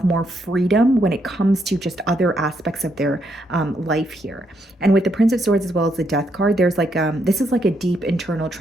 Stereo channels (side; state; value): both; normal; correlation 0.76